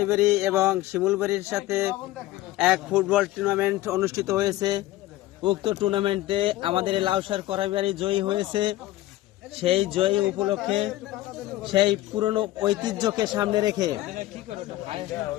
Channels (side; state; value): right; quieter; 16.1 dB